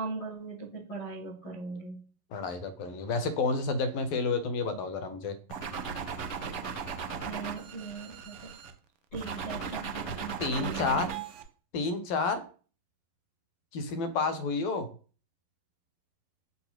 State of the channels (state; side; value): late; right; 11 ms